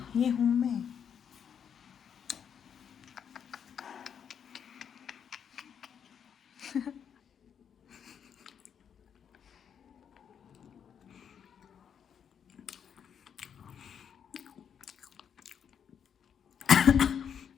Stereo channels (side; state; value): right; quieter; 7.9 dB